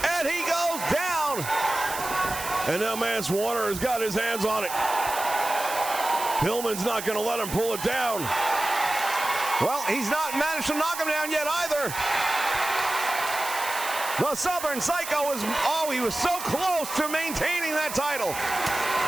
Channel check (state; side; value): noise; right; hiss, 8 dB below the sound